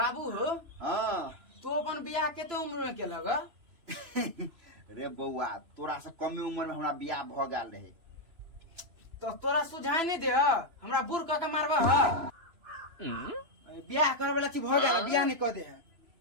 हो हाँ तू अपन बियाह केते उम्र में केलक। रे बउआ तोरा से कमे उम्र में हमरा बियाह भ गेल रहे तो तोरा सुझाय नहीं दे हमरा बूढ़ क के मारबा बियाह करे वाला चीज भ गेल बियाह नहीं क दे।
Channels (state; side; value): late; left; 2.9 ms